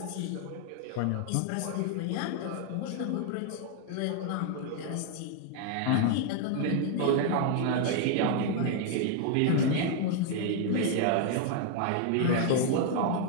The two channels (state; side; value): different; both; correlation 0.00